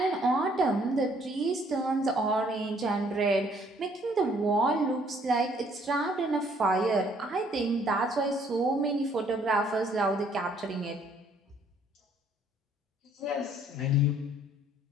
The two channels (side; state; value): both; normal; correlation 0.63